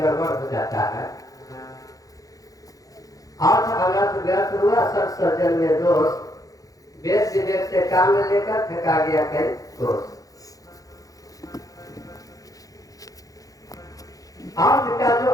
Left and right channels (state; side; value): late; right; 0.17 ms